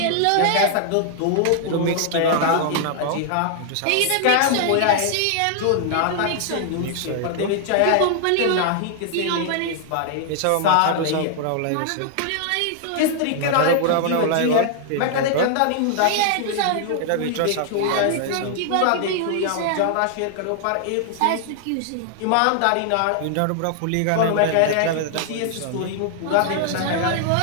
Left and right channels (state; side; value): different; both; correlation 0.00